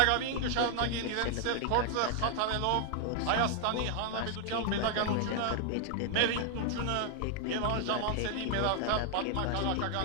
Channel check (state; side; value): different; both; correlation 0.00